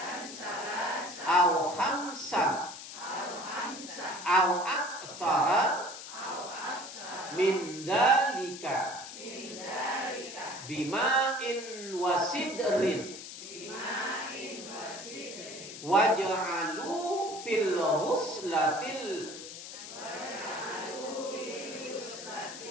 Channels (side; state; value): left; noise; hiss, 11 dB below the sound